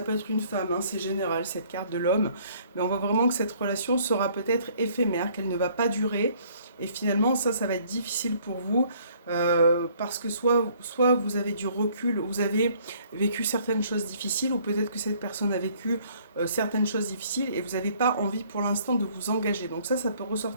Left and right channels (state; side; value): inverted; both; correlation -0.60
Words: peut être une femme, hein, c'est général cette carte de l'homme, mais on voit vraiment que cette relation sera peut-être éphémère, qu'elle ne va pas durer, et finalement ça va être difficile pour vous, parce que soit vous avez du recul, vous avez vécu certaines choses difficiles, ou peut-être que cette personne a vécu certaines choses difficiles, et vous n'avez pas envie pour l'instant de vous engager, donc ça peut